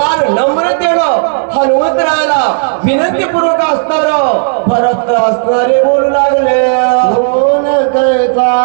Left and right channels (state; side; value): silent; left; digital silence